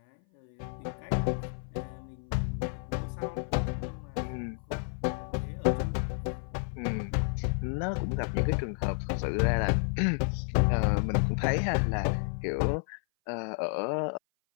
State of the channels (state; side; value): silent; right; 56 dB below the other